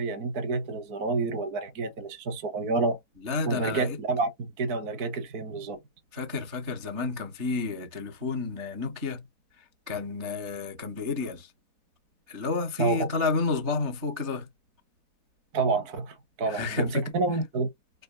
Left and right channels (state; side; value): late; left; 3.4 ms